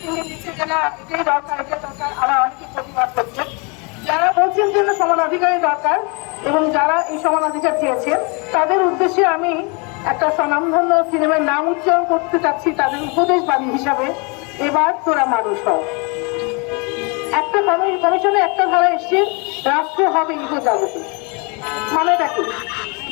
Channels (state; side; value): quieter; right; 31.7 dB